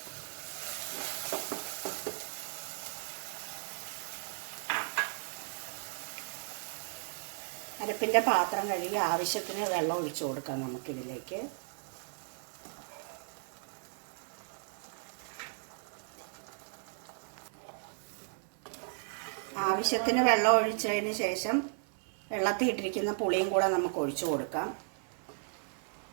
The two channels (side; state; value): left; silent; 54 dB below the other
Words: അരപ്പിൻ്റെ പാത്രം കഴുകി ആവശ്യത്തിന് വെള്ളം ഒഴിച്ചു കൊടുക്കാം നമുക്കിതിലേക്ക്. ആവശ്യത്തിന് വെള്ളം ഒഴിച്ചതിന് ശേഷം വെള്ളത്തിൽ ഇട്ടിരിക്കുന്ന പുളിയും കൂടെ നമുക്ക് ഒഴിച്ചു കൊടുക്കാം.